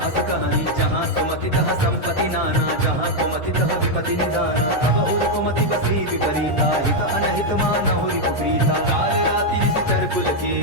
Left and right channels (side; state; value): both; normal; correlation 0.00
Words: अस कहानी जहाँ सुमति तहाँ संपत्ति नाना जहाँ कुमति तहाँ विपति निदाना तब उर कुमति बसी विपरीता हित अनहित मानहु रिपु प्रीता काल राति निशिचर कुल